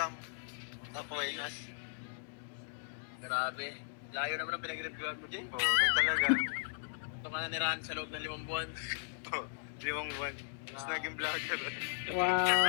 Awareness. Grabe. Layo naman ang pinag-reviewan mo, Jay. Oo, ganun talaga. Ito ka na nirahan sa loob ng 5 buwan. Oo, 5 buwan. Tapos naging vlogger.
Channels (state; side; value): silent; right; digital silence